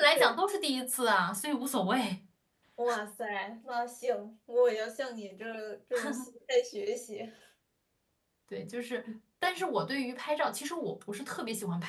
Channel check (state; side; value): identical; both; correlation 1.00